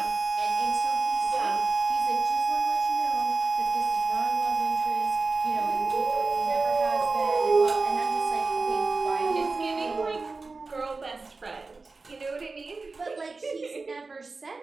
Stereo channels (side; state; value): left; quieter; 3.9 dB